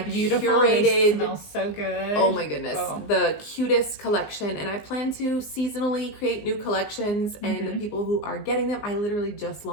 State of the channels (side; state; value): right; late; 19 ms